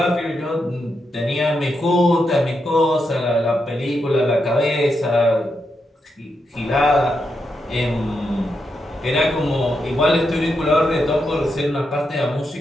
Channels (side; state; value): both; normal; correlation 0.84